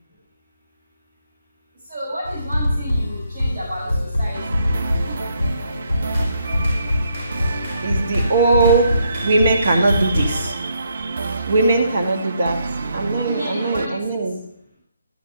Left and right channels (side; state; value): both; inverted; correlation -0.75